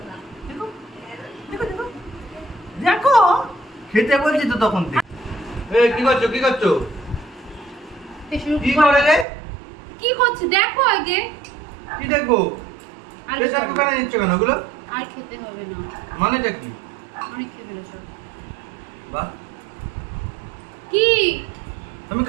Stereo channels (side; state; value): left; drops out; at 9.2 s